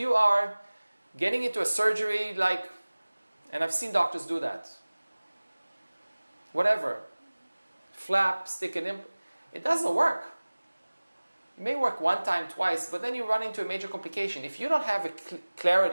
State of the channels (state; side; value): inverted; both; correlation -1.00